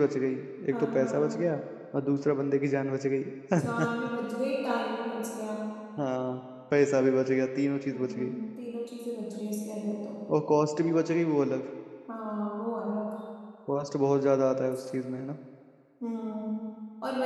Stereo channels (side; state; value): both; identical; correlation 1.00